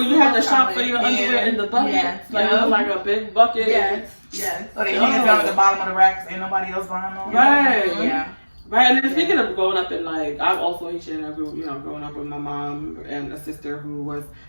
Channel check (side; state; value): both; inverted; correlation -1.00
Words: you have to shop for your underwear in the bucket. Like, it was like a big bucket. Yes. So they hang it down at the bottom of the racks. Ain't nobody else buying them. Right. Yeah. Right, and then speaking of growing up in like, I'm also Haitian, and you know, growing up with my mom and a sister who was